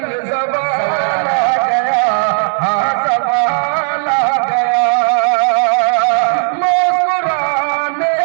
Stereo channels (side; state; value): left; silent; digital silence